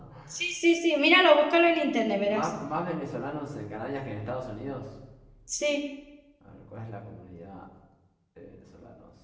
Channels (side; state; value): both; identical; correlation 1.00